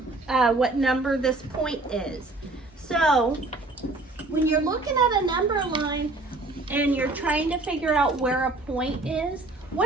what number this point is. So when you're looking at a number line and you're trying to figure out where a point is,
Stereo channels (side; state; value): left; quieter; 3.1 dB